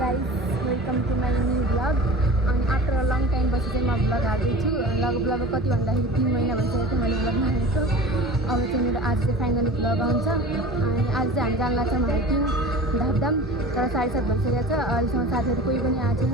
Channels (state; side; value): normal; both; correlation 0.38